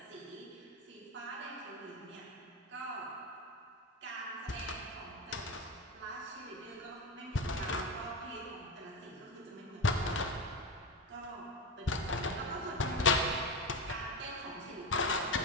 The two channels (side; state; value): both; normal; correlation 0.18